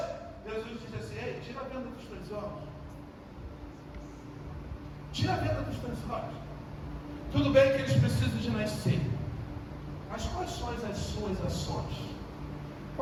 Jesus diz assim: ei, tira a venda dos teus olhos. Tira a venda dos teus olhos. Tudo bem que eles precisam de nascer, mas quais são as suas ações?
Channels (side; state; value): both; identical; correlation 1.00